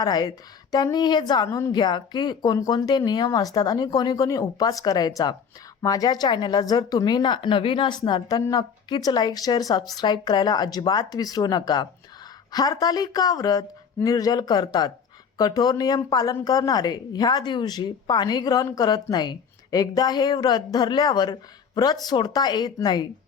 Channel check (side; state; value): right; quieter; 6.6 dB